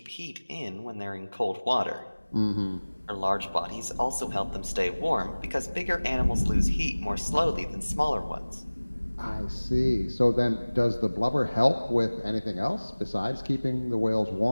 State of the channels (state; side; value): inverted; both; correlation -1.00